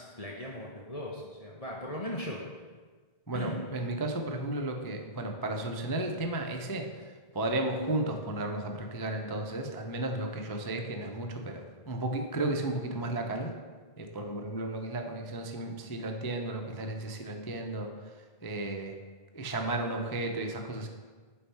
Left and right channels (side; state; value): right; late; 1.1 ms